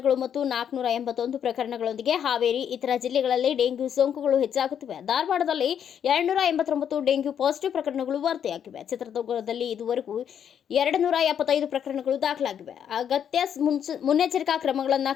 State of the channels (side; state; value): right; quieter; 8.7 dB